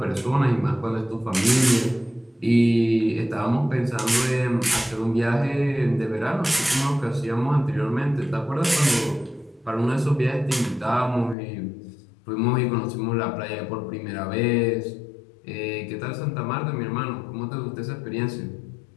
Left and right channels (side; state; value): right; drops out; at 11.4 s